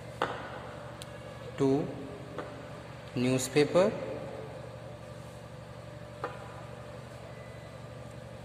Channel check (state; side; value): identical; both; correlation 1.00